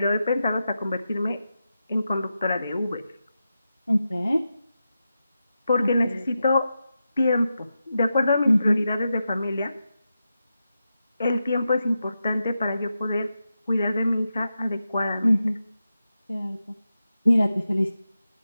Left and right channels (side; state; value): both; inverted; correlation -0.89